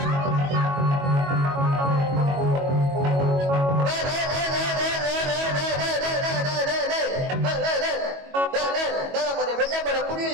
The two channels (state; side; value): late; left; 22 ms